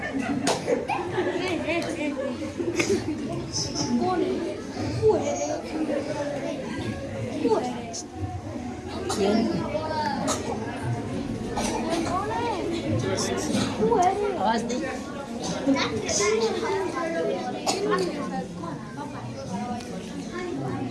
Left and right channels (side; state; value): both; identical; correlation 1.00